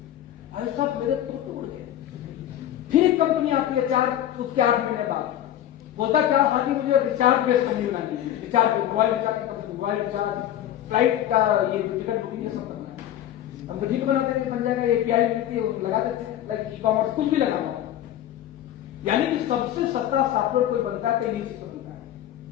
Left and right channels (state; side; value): quieter; right; 11.9 dB